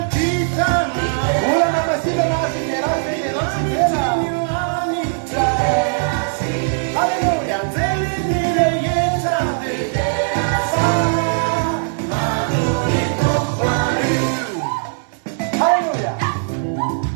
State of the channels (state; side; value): silent; left; digital silence